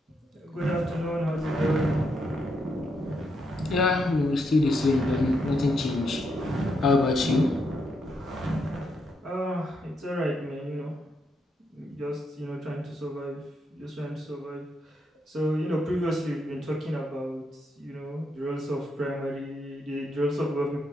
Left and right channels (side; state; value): both; normal; correlation 0.79